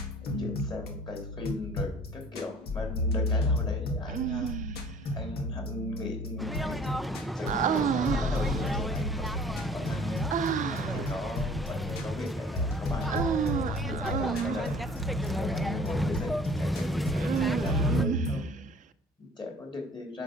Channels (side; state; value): both; normal; correlation 0.50